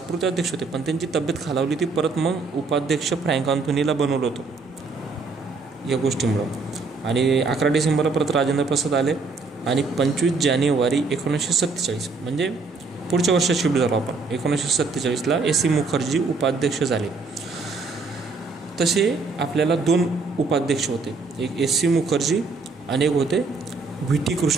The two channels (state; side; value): quieter; left; 4.1 dB